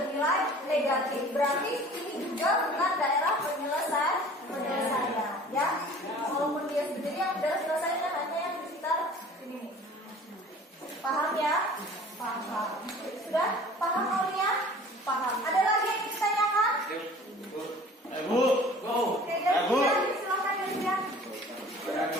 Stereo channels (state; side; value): normal; both; correlation 0.46